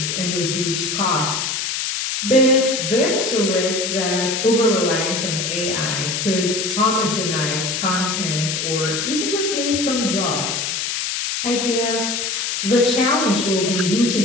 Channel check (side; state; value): left; noise; hiss, 1 dB below the sound